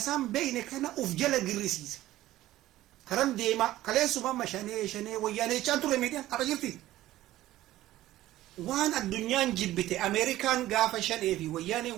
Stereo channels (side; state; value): left; quieter; 15.1 dB